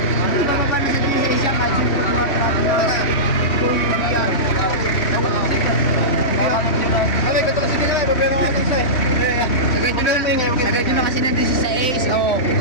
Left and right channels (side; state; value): right; late; 3.1 ms